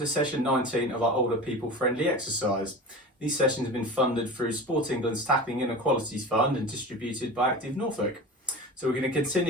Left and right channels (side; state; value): both; normal; correlation 0.32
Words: session 19 of our older people friendly exercise. These sessions have been funded through Sport England's Tackling Inequalities Fund and distributed by Active Norfolk. So we're going to